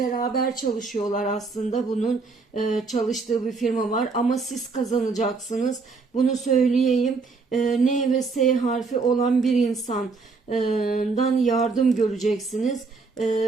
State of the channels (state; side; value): quieter; left; 4.4 dB